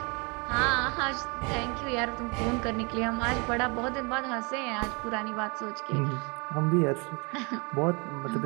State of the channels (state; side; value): quieter; left; 30.6 dB